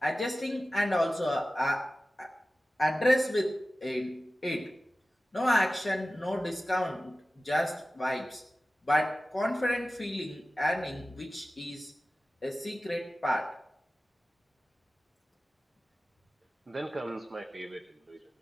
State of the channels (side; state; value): both; normal; correlation 0.96